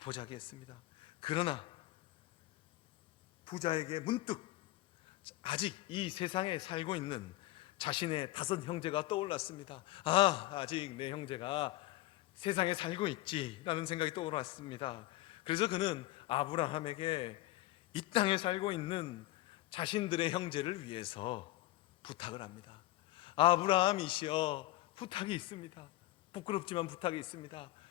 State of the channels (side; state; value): right; quieter; 17.7 dB